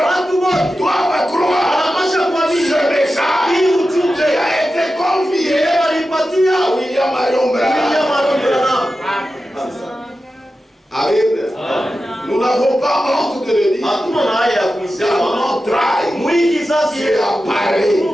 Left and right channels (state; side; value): normal; both; correlation 0.92